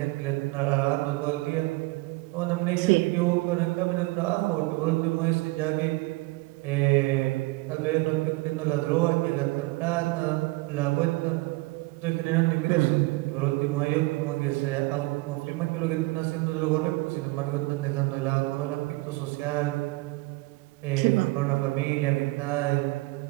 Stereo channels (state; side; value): quieter; left; 22.9 dB